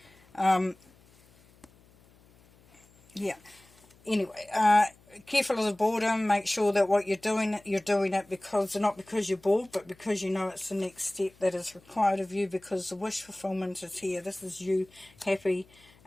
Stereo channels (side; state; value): left; noise; hum, 28 dB below the sound